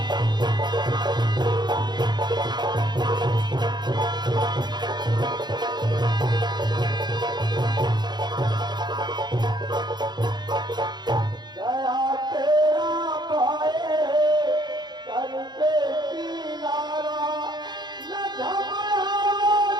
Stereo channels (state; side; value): late; left; 0.21 ms